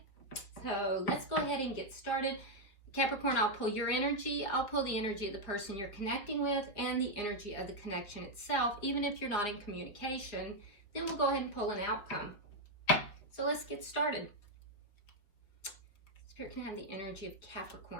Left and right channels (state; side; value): late; right; 4.9 ms